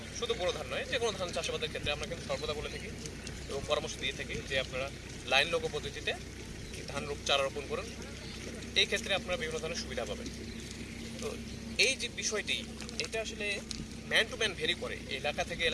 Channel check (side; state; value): both; identical; correlation 1.00